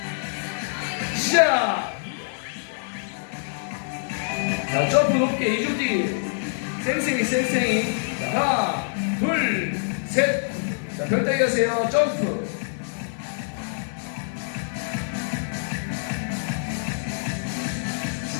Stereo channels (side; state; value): right; silent; digital silence